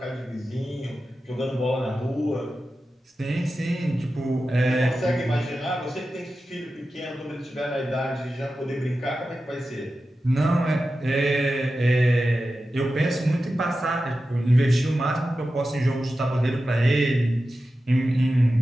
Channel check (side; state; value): both; normal; correlation 0.93